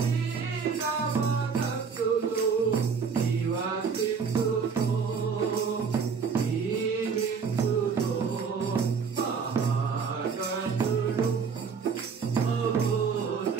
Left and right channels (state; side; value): quieter; left; 5.8 dB